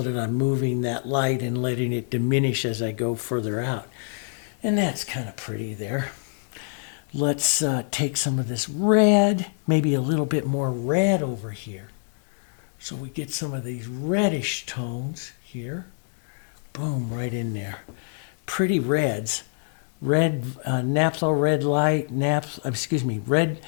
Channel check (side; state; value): right; silent; 61 dB below the other